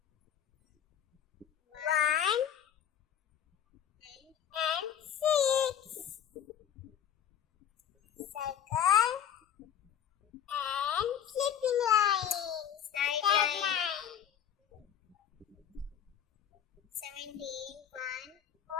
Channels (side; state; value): right; quieter; 9.5 dB